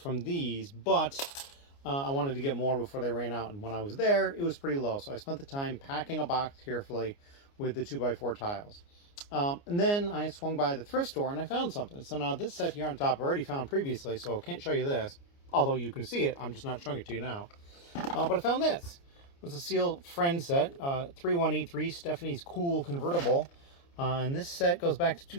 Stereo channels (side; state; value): right; late; 29 ms